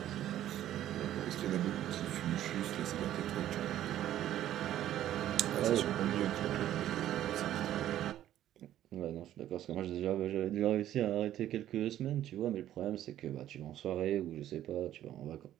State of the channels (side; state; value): left; quieter; 12.3 dB